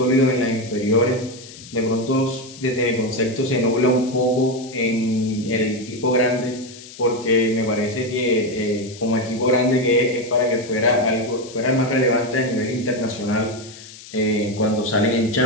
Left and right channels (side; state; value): left; noise; hiss, 17 dB below the sound